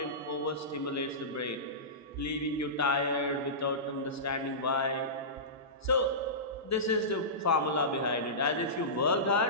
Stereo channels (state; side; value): normal; both; correlation -0.20